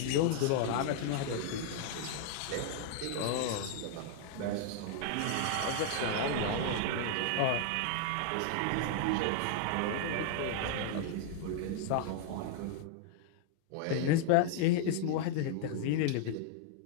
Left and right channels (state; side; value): different; both; correlation -0.01